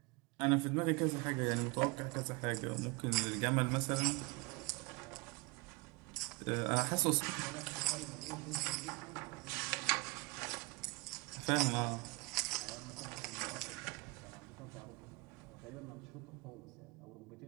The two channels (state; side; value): quieter; left; 26.3 dB